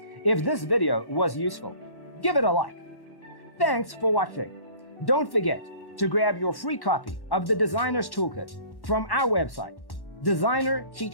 If this video was useful, give it a like. Thanks for watching. Don't forget to grab your free copy of the Designer's Toolkit from our website,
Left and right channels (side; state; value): right; late; 1.1 ms